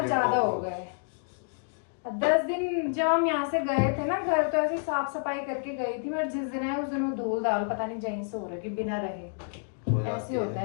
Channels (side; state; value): right; silent; digital silence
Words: गए ज्यादा हो गए। 10 दिन जब हम यहाँ से गए थे ना घर, तो ऐसे साफ सफाई करके गई थी, और जिस दिन आए उस दिन वो धूल दाल पता नहीं जहीं से हो रही बिना रहे। ऐसे होता